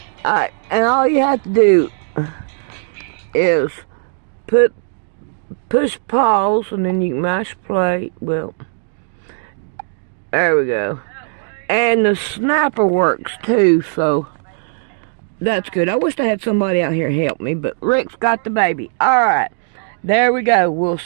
Alright, and all you have to do is push pause and then you can mash play. Well, there we go. And the snapper works too, so that's good. I wish I had somebody out here help me, but Rick's got the baby. Alright, there we go. We'll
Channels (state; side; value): silent; left; digital silence